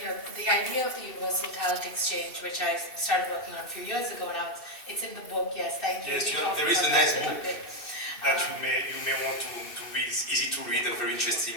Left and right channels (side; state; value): right; late; 2.7 ms